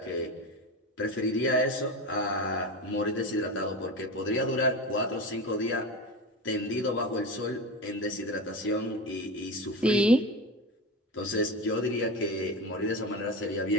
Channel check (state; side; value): normal; both; correlation 0.24